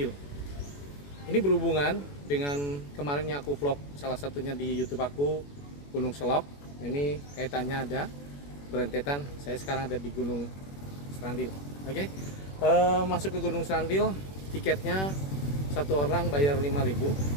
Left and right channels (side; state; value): right; late; 21 ms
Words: Ini berhubungan dengan kemarinnya aku vlog salah satunya di YouTube aku, Gunung Selok. Ini kaitannya ada berentetan. Saya sekarang ada di Gunung Serandil. Oke, masuk ke Gunung Serandil, tiketnya satu orang bayar